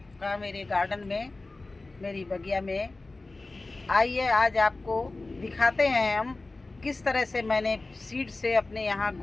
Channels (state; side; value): quieter; right; 3.2 dB